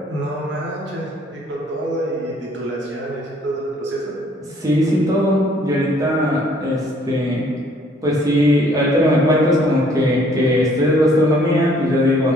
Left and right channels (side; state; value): both; normal; correlation 0.61